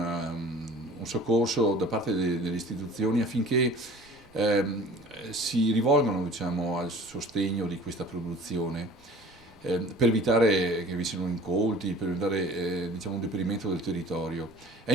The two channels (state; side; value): noise; right; rumble, 27 dB below the sound